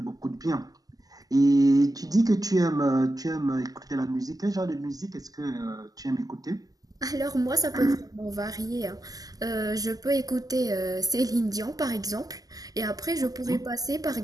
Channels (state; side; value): late; left; 0.17 ms